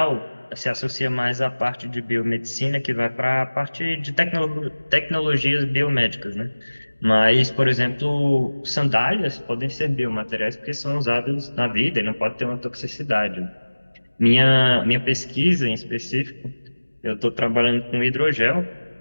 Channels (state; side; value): inverted; both; correlation -1.00